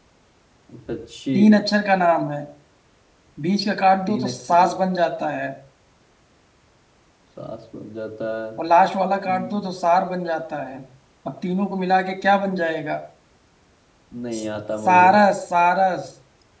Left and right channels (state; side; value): identical; both; correlation 1.00